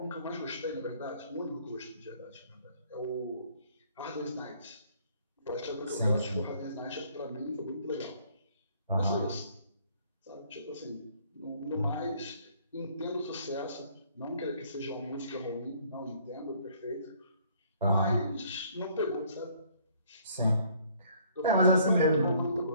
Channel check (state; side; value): inverted; both; correlation -0.61